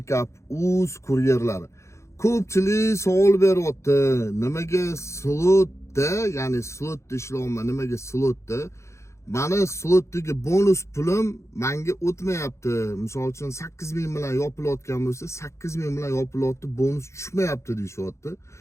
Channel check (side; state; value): right; late; 0.14 ms